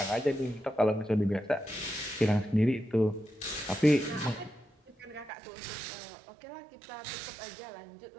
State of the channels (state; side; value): drops out; left; at 5.3 s